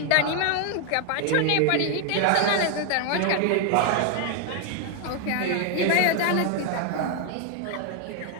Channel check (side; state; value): both; different; correlation 0.00